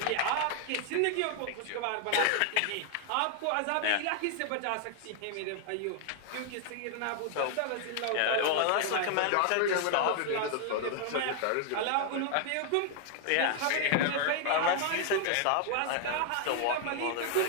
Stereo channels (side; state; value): both; different; correlation 0.00